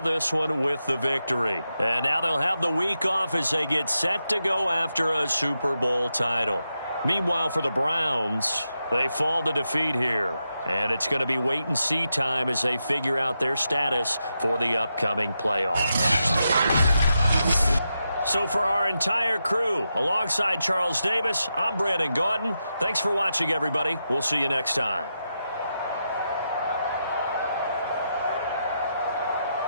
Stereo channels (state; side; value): inverted; both; correlation -0.86